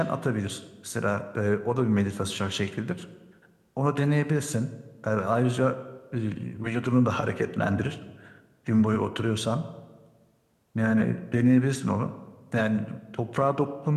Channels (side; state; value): both; identical; correlation 1.00